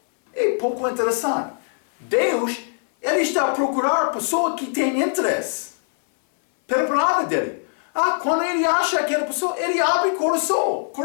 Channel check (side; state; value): right; silent; 61 dB below the other